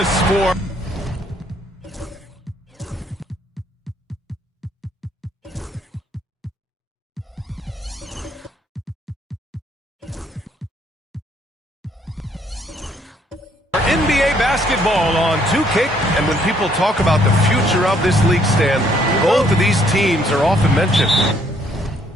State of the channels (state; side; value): normal; both; correlation 0.66